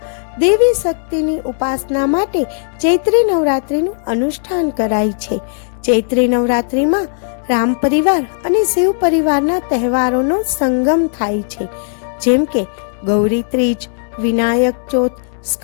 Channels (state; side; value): silent; right; 67 dB below the other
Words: દેવી શક્તિની ઉપાસના માટે ચૈત્રી નવરાત્રિનું અનુષ્ઠાન કરાય છે. ચૈત્રી નવરાત્રિમાં રામ પરિવાર અને શિવ પરિવારના તહેવારોનો સંગમ થાય છે, જેમ કે ગૌરી ત્રીજ, વિનાયક ચોથ,